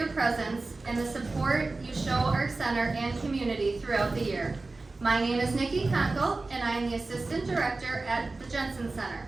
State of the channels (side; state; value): left; quieter; 3.4 dB